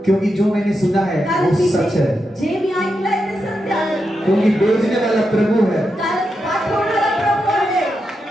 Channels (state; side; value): normal; both; correlation 0.86